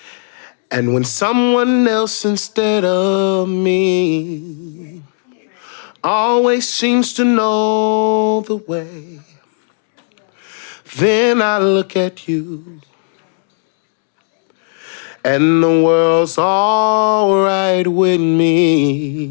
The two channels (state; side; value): silent; right; digital silence